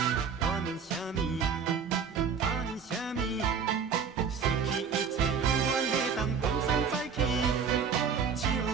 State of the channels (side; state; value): left; quieter; 6.3 dB